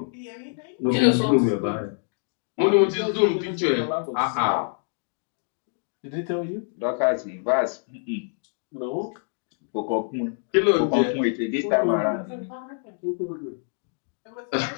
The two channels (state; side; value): silent; right; 61 dB below the other